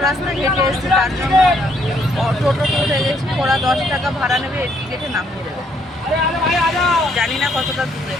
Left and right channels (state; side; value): normal; both; correlation 0.69